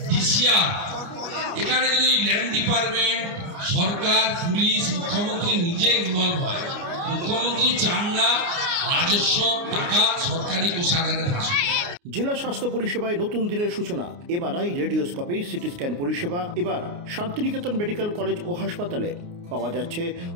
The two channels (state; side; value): late; left; 29 ms